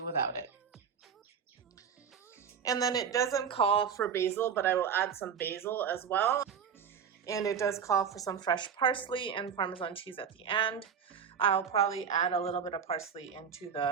without it. And then it doesn't call for basil, but I will add some basil as well. And it does call for some fresh parsley and Parmesan cheese at the end. I'll probably add a little bit of parsley into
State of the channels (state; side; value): quieter; left; 7.3 dB